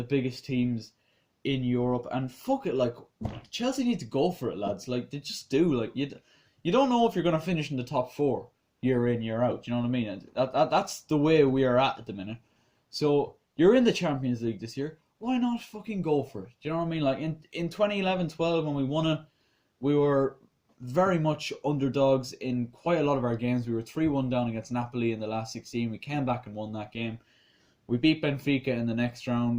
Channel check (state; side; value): identical; both; correlation 1.00